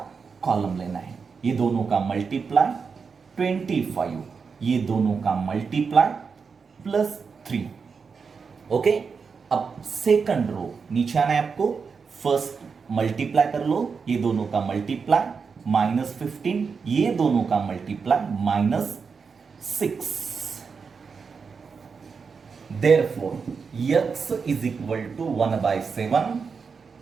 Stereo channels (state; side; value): quieter; left; 5.5 dB